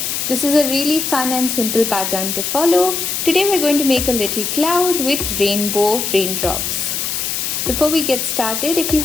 This is a really fun and simple pattern to follow. Today we're going to make a little cloud with rainbow raindrops. Before we get started, if you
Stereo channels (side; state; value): left; noise; hiss, 2 dB below the sound